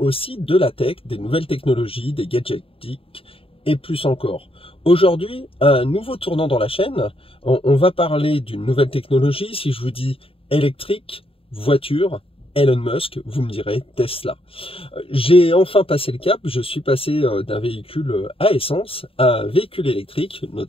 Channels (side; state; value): right; late; 0.27 ms